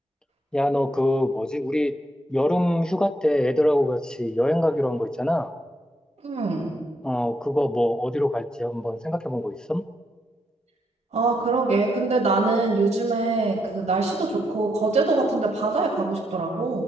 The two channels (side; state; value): both; normal; correlation 0.78